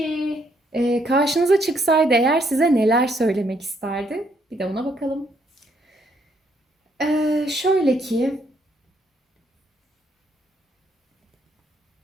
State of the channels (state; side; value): normal; both; correlation 0.71